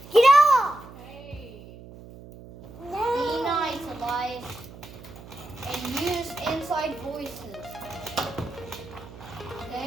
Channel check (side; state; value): right; noise; hum, 17 dB below the sound